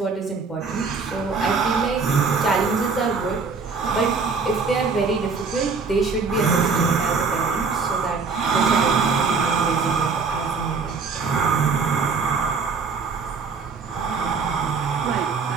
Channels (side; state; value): left; quieter; 4.9 dB